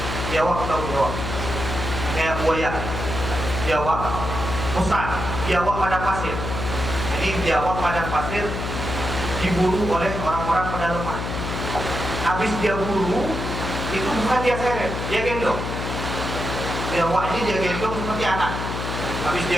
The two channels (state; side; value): noise; left; hum, 4 dB below the sound